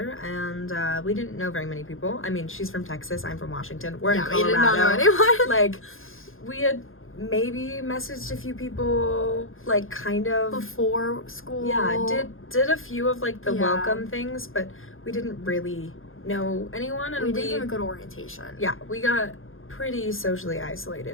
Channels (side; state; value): right; late; 0.60 ms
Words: and we didn't know very many people. I mean, she's from Texas, I'm from Washington. We're in Colorado. We did not know anyone. Like we had maybe messaged a few people, like kind of before school. Yeah, did a few of like the welcome things, but we didn't really know anyone, and we didn't even go to orientation. Yeah, we got pretty socially